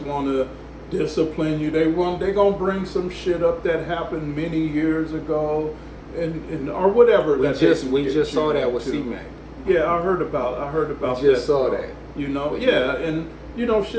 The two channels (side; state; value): both; identical; correlation 1.00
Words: want to discipline you. They gonna bring some shit up that happened many years ago, and or whatever. We just saw that with C-Mac. Yeah, I heard about We just that. saw that. You know, and you know,